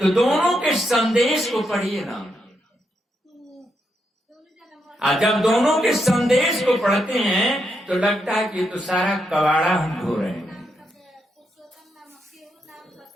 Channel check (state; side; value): normal; both; correlation 0.81